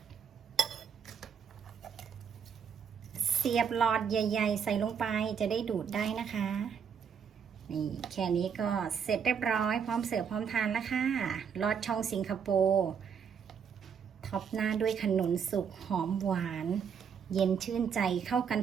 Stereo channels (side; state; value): left; quieter; 7.2 dB